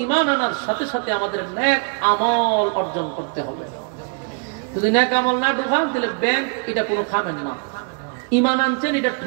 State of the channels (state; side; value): quieter; left; 36.2 dB